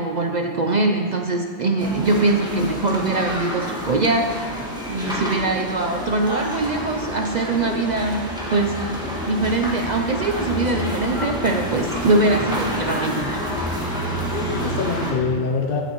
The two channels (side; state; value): both; normal; correlation -0.19